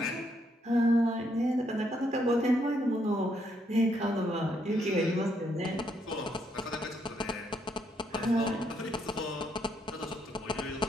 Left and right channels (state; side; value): normal; both; correlation 0.74